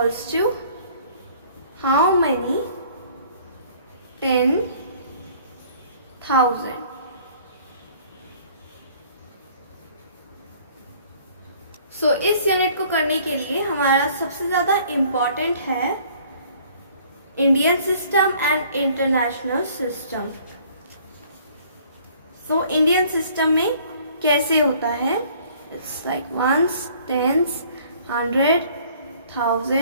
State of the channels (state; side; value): inverted; both; correlation -0.55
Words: to how many 10,000? So इस यूनिट को करने के लिए हमारा सबसे ज्यादा इम्पॉर्टेंट है Indian system and international system. So Indian system में कैसे होता है, it's like once, tens, 100,